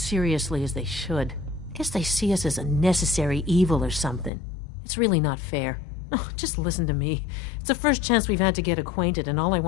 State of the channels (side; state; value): right; drops out; at 4.3 s